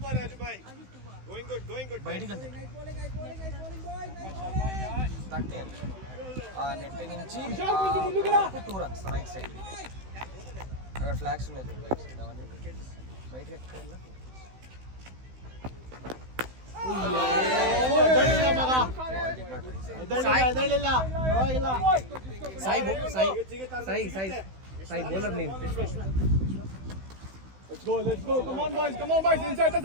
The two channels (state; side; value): late; left; 16 ms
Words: Raju bhai. Going good. బయటికి వెళ్తే తక్కే ఆ net నుంచి 2 runs right side. అక్కడ flags ఉన్నాయి చూడు right side అవన్నీ బయటికి ఎక్కడ Sai bowler name. Let's go. Come on, boys. Inside the